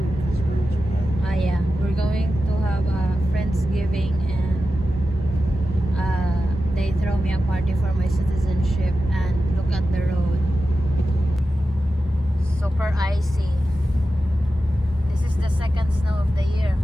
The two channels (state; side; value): normal; both; correlation 0.92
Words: yeah, we're going to have a Friendsgiving and they throw me a party for my citizenship, and look at the road. Super icy. This is the second snow of the year.